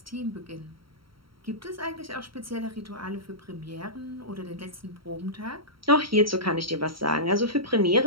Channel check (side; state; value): left; late; 0.74 ms